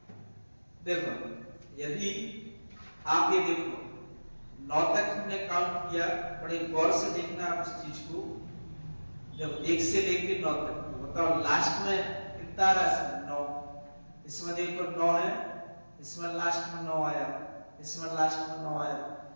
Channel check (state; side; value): inverted; both; correlation -1.00